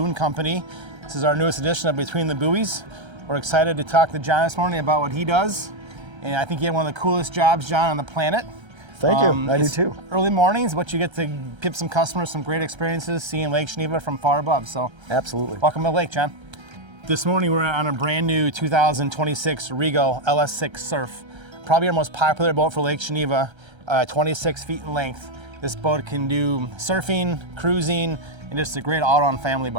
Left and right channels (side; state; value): left; late; 1.3 ms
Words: Company. This is our newest edition of Between the Buoys. We're excited to talk to John this morning about what he does. And I think you have one of the coolest jobs, John, on the planet. Thank you. I do too. Early mornings, but you get to give some customers some great experiences seeing Lake Geneva from far above. So Absolutely. welcome to the lake, John. This morning we're on a brand new 2026 Regal LS6 Surf. Probably our most popular boat for Lake Geneva, 26 feet in length. This boat can do surfing, cruising, and just a great all-around family